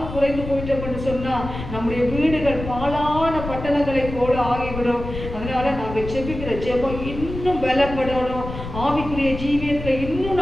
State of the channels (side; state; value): left; noise; rumble, 9 dB below the sound